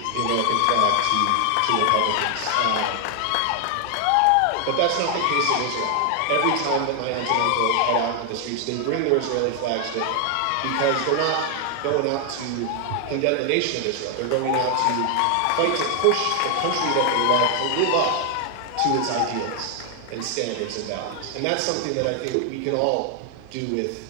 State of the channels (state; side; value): different; both; correlation 0.00